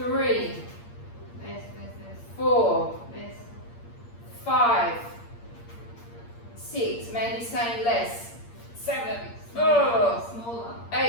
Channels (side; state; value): right; late; 8.6 ms